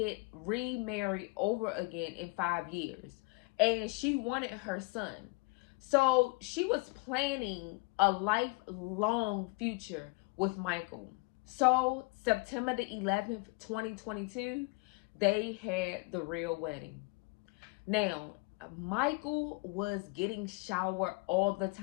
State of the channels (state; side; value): quieter; right; 27.4 dB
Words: remarried over again in 5 years. And she wanted her son. So she was planning a lifelong future with Michael. So September the 11th, 2022, they had the real wedding. Now, Michael was getting showered all the